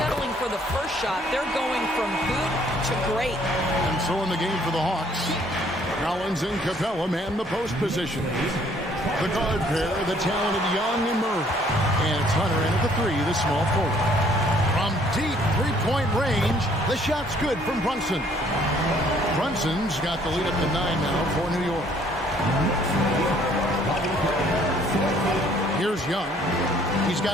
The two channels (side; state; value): both; normal; correlation 0.61